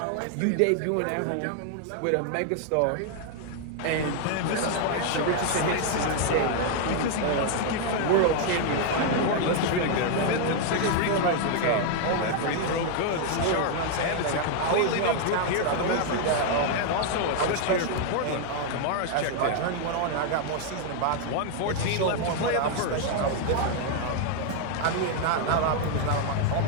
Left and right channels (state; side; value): different; both; correlation 0.00